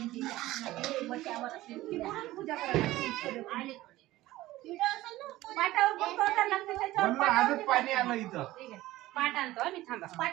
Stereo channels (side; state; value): left; quieter; 16.7 dB